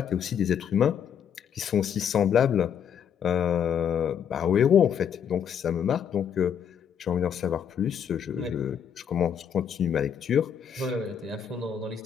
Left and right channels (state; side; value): quieter; right; 8.1 dB